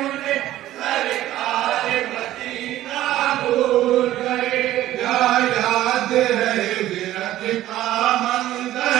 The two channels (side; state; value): left; quieter; 14.1 dB